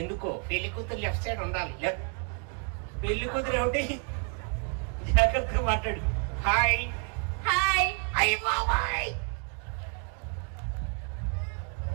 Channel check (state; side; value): quieter; left; 38.9 dB